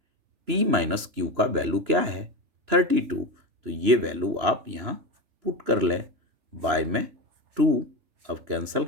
p माइनस q का वैल्यू क्या है? 32। तो ये वैल्यू आप यहाँ पुट कर लें। बाय में 2 अब कैंसिल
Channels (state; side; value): late; left; 3.0 ms